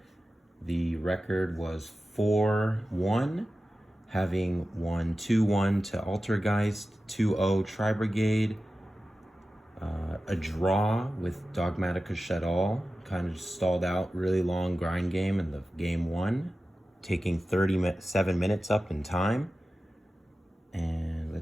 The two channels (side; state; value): both; normal; correlation 0.94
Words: The record was 4-1, having won 2-1 to Altergeist, 2-0 Tri-Brigade, a draw with Dogmatica Shadal, kind of stalled out, really long grind game in the game one, taking 37 minutes up in time. And